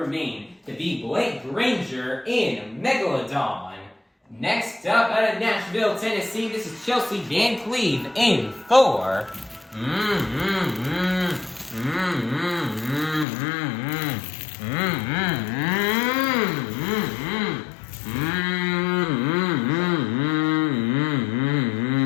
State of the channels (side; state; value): right; drops out; at 13.2 s